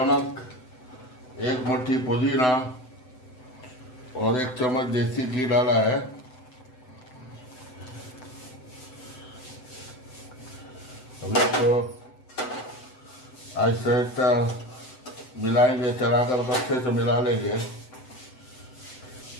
1 मुट्ठी पुदीना और 1 चम्मच देसी घी डाला है। अब इसको आहिस्ता आहिस्ता मिलाएंगे, चलाकर अच्छे से मिला लेंगे।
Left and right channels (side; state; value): right; late; 7.9 ms